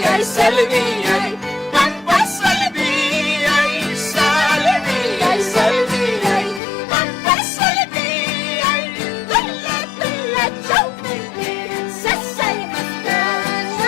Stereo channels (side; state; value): right; drops out; at 6.6 s